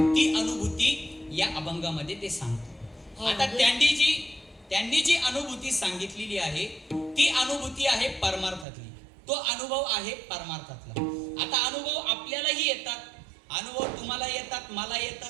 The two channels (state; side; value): drops out; left; at 8.7 s